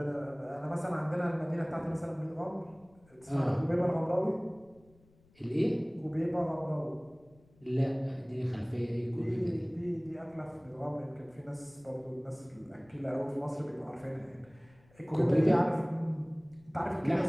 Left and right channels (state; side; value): noise; left; rumble, 29 dB below the sound